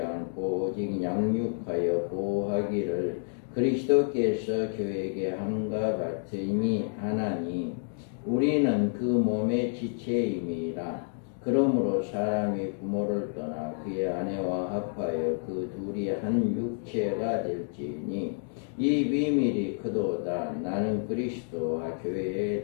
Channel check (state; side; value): silent; right; digital silence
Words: 오직 양육하여 보호하기를 그리스도께서 교회에게 함과 같으니 하나니 우리는 그 몸의 지체임이라. 그러므로 사람이 부모를 떠나 그의 아내와 합하여 그 둘이 한 육체가 될지니 이 비밀이 크도다. 나는 그리스도와 교회에